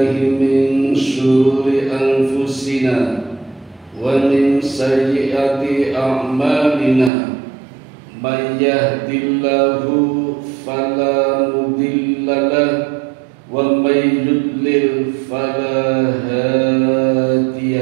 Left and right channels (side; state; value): left; drops out; at 7.1 s